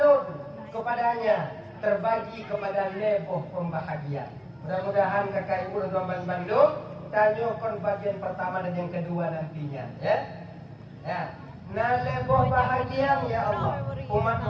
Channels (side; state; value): both; identical; correlation 1.00